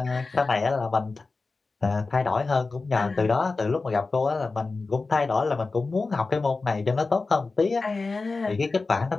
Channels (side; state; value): right; quieter; 3.8 dB